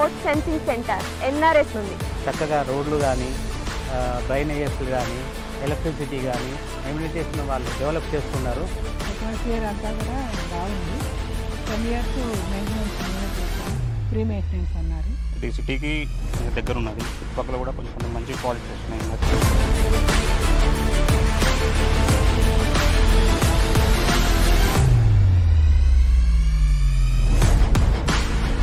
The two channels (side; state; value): both; identical; correlation 1.00